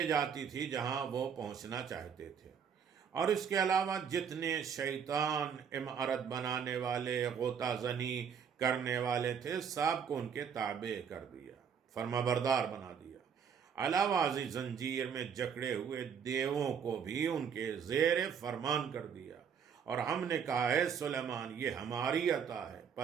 جاتی تھی جہاں وہ پہنچنا چاہتے تھے۔ اور اس کے علاوہ جتنے شیطان عمارت بنانے والے، غوطہ زنی کرنے والے تھے، سب کو ان کے تابع کر دیا، فرما بردار بنا دیا۔ علاوہ ازیں زنجیر میں جکڑے ہوئے دیووں کو بھی ان کے زیر فرمان کر دیا۔ اور ہم نے کہا ہے سلیمان یہ ہماری عطا ہے،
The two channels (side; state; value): left; quieter; 7.4 dB